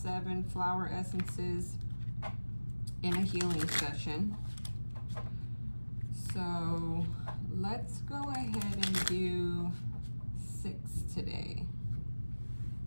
flower essences in a healing session. So let's go ahead and do 6 today.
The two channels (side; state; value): both; inverted; correlation -1.00